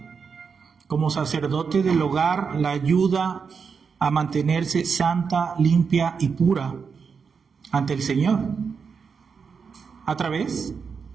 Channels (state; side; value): quieter; left; 5.8 dB